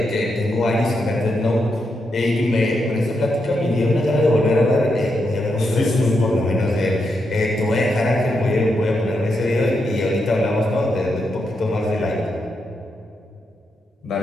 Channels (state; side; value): normal; both; correlation 0.83